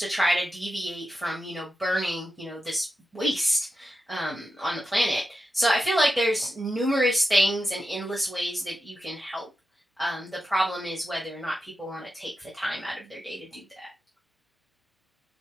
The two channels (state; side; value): normal; both; correlation 0.91